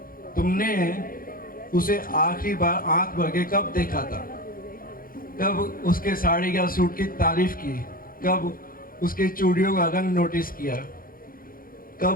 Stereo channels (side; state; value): right; late; 0.42 ms